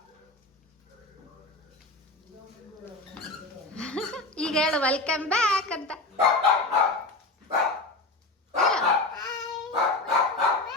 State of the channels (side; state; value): right; quieter; 3.0 dB